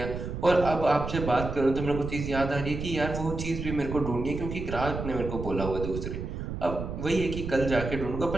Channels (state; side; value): noise; right; rumble, 6 dB below the sound